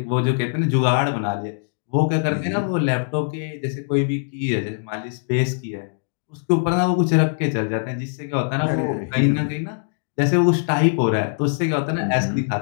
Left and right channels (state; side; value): silent; right; digital silence